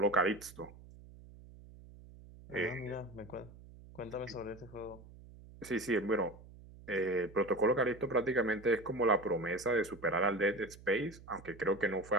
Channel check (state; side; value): noise; right; hum, 19 dB below the sound